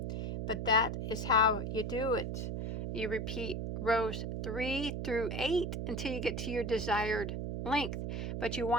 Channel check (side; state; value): right; noise; hum, 2 dB below the sound